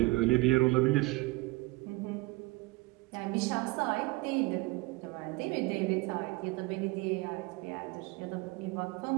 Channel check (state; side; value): quieter; left; 22.5 dB